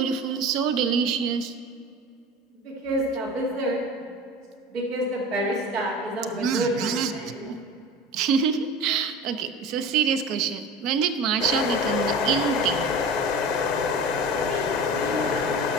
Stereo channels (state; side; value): normal; both; correlation 0.34